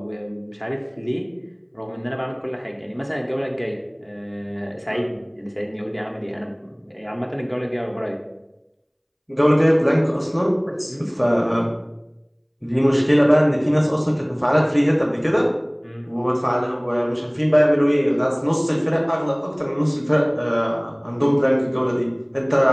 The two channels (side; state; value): both; identical; correlation 1.00